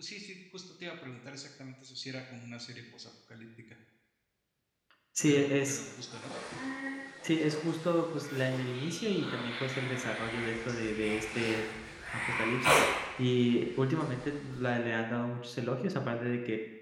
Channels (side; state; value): both; identical; correlation 1.00